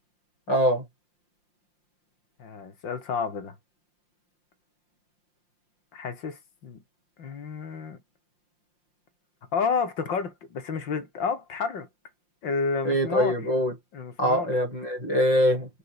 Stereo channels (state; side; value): late; right; 5.7 ms